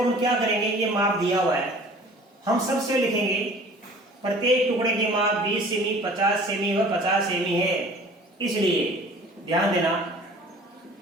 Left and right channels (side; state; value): both; normal; correlation 0.48